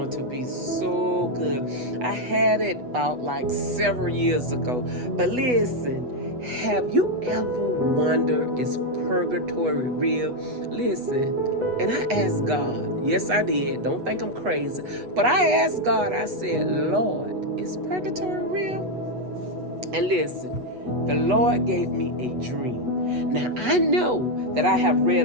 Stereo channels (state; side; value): late; left; 8.1 ms